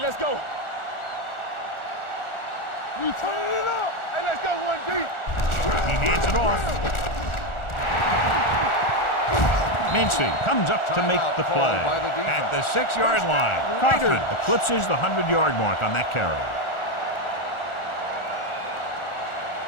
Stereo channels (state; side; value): late; right; 1.4 ms